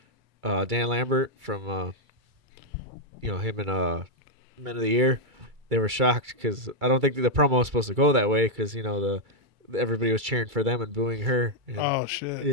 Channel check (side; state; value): left; late; 2.3 ms